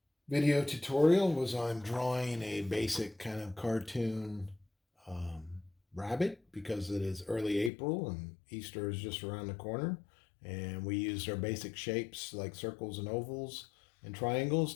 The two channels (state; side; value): drops out; right; at 7.7 s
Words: video tutorial was on drawing a basic kind of cartoon um, rabbit because it is early April and Easter is just around the corner. And we used our basic shapes like circles and ovals and triangles